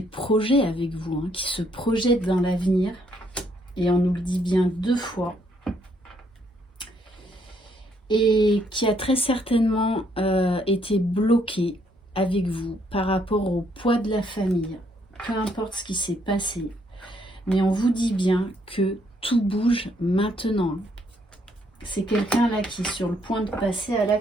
projets avec vous, hein, qui se projette dans l'avenir, et on nous le dit bien 2 fois. Et qui a très certainement été bloqué avec vous par rapport au poids de la famille, peu importe ce qui s'est passé. Mais on vous dit bien que tout bouge maintenant. C'est quelqu'un là qui est sur le point de passer à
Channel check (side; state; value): both; normal; correlation 0.70